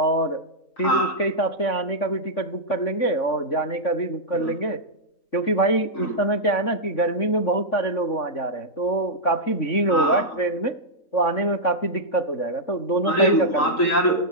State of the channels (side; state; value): right; late; 3.6 ms